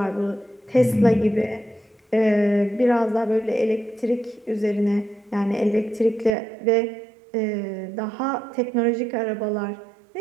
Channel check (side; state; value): left; drops out; at 6.4 s